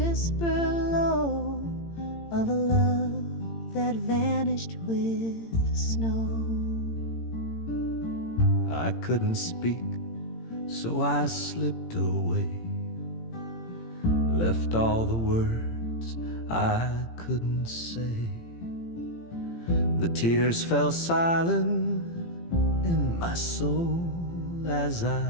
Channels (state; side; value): late; right; 18 ms